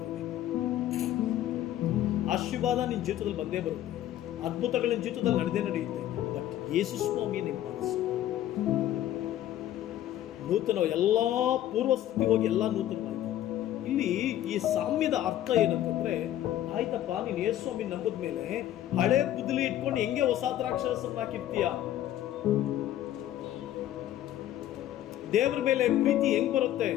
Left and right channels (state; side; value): quieter; right; 12.6 dB